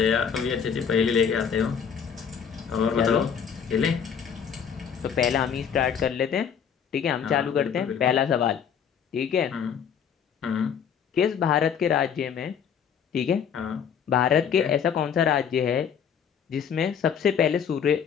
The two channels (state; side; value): quieter; right; 7.5 dB